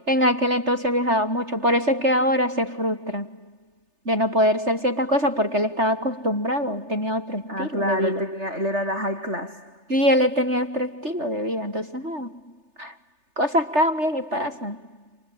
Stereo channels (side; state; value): left; late; 3.3 ms